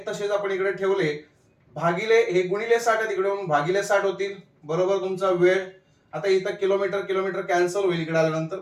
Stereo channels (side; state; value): both; identical; correlation 1.00